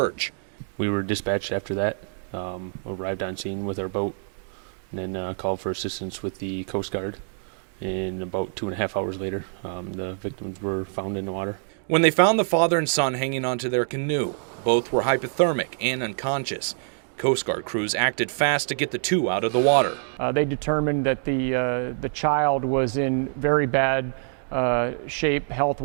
We were dispatched after that, arrived on scene with our boat, and then called for assistance with the Coast Guard. And about 2.5 hours later, the victims were found in the water. When they found the father and son hanging onto their canoe, both were hypothermic and unconscious. Coast Guard crews acted fast to get the two out of the water. They determined that the child was in very bad shape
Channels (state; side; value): silent; left; digital silence